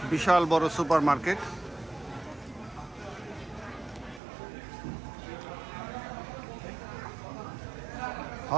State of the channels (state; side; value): drops out; left; at 4.2 s